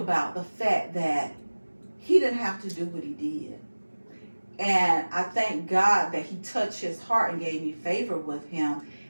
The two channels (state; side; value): inverted; both; correlation -1.00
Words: the fact that he didn't have to do what he did. And I thank God that he touched his heart and gave me favor with him.